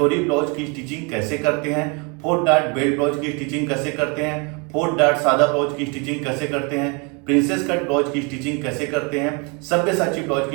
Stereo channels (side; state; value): left; quieter; 32.5 dB